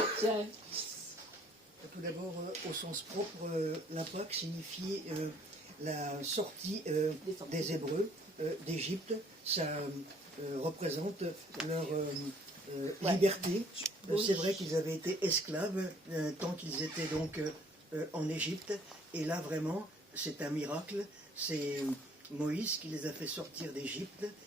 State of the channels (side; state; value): both; normal; correlation 0.60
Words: Tout d'abord, au sens propre, la Pâque signifie la sortie des Hébreux d'Égypte. Ça représente leur liberté. C'est vrai qu'ils avaient été esclaves tant qu'ils étaient donc en Égypte. Et là, vraiment, c'est un miracle. C'est Moïse qui les a fait sortir d'Égypte.